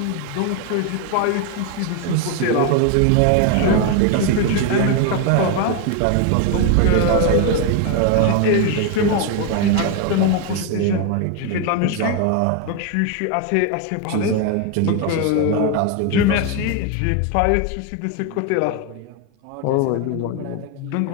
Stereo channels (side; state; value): both; different; correlation 0.01